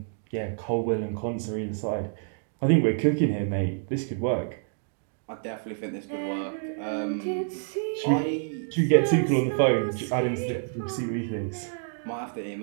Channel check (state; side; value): silent; left; digital silence